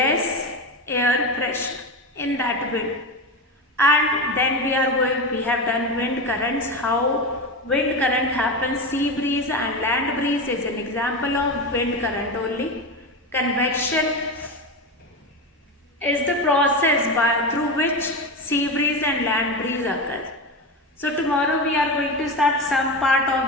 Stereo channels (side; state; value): both; normal; correlation 0.20